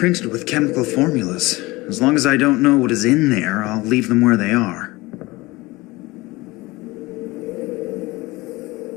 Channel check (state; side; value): quieter; right; 21.6 dB